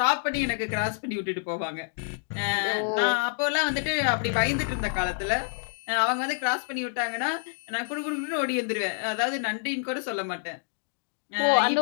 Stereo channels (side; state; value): right; silent; digital silence